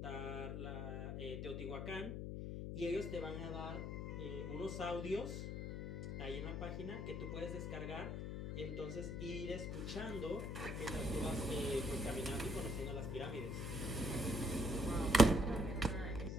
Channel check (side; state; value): left; noise; hum, 3 dB below the sound